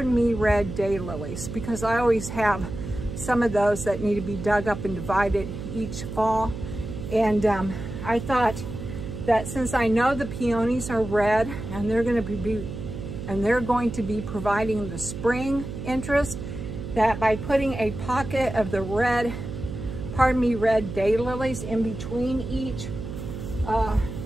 Me red daylilies, because I always have some of those that need to be dug up and divided each fall. And I thought that since I know the peonies are red and they're going to be providing the spring interest, that by putting a pocket of the red Pardon Me red daylilies in between each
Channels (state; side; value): noise; right; hum, 8 dB below the sound